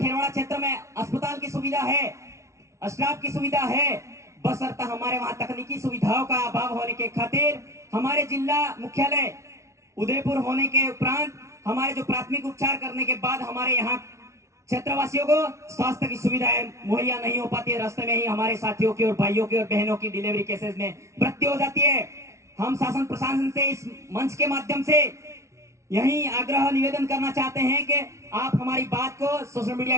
क्षेत्र में अस्पताल की सुविधा है, स्टाफ की सुविधा है, बशर्ते हमारे वहां तकनीकी सुविधाओं का अभाव होने के खातिर हमारे जिला मुख्यालय उदयपुर होने के उपरांत हमारे जो प्राथमिक उपचार करने के बाद हमारे यहाँ क्षेत्रवासियों को स्वास्थ्य की सुविधाएं मुहैया नहीं हो पाती है। रास्ते में ही हमारे साथियों की और भाइयों की और बहनों की डिलीवरी केसेस में मृत्यु हो जाती है। हम शासन प्रशासन से इस मंच के माध्यम से यही आग्रह निवेदन करना चाहते हैं कि आप हमारी बात को, सोशल मीडिया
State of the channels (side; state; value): left; late; 0.14 ms